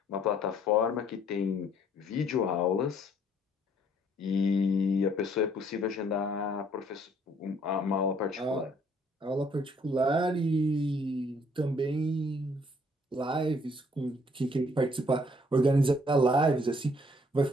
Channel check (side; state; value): both; normal; correlation 0.63